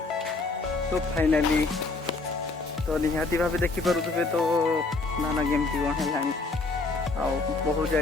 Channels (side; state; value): right; quieter; 3.6 dB